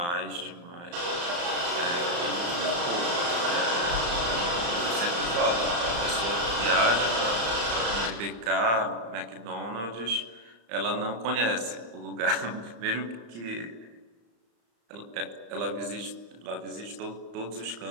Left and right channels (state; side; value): late; left; 35 ms